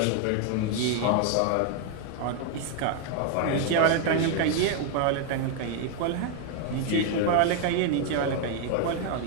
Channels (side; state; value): both; different; correlation 0.01